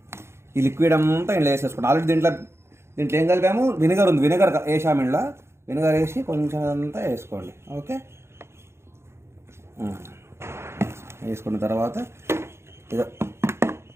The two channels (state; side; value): late; left; 0.13 ms